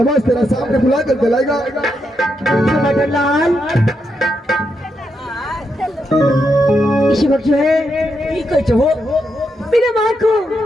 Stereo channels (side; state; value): both; normal; correlation 0.82